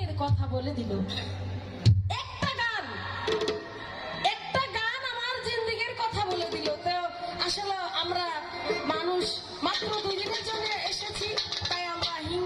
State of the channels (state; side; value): identical; both; correlation 1.00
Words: কথা বলে দিল। একটা গান আমার জিন্দেগীর কথা বলে দিল। তো আসলে আমরা মানুষ মাত্র 2 দিনের জন্য এসেছি, তাই আমরা